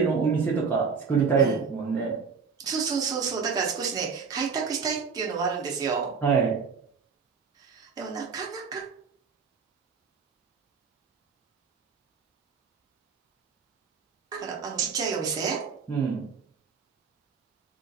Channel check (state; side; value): quieter; left; 5.6 dB